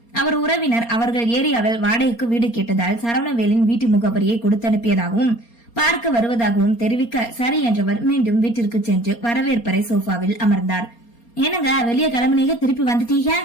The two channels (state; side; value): late; right; 4.3 ms